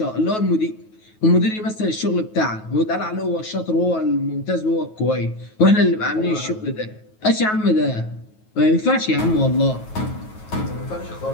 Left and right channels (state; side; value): late; right; 9.3 ms